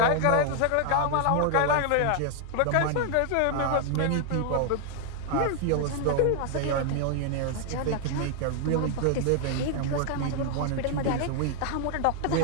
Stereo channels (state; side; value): different; both; correlation 0.00